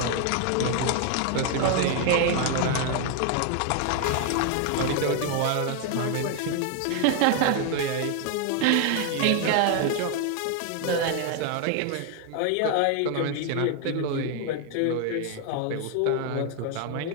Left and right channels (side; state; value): both; different; correlation 0.00